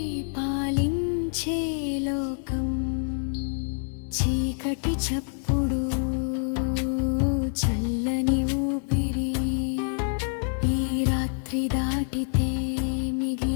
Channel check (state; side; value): silent; right; digital silence